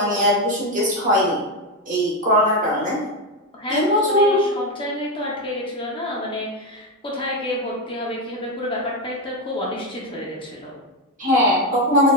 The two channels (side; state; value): both; normal; correlation 0.09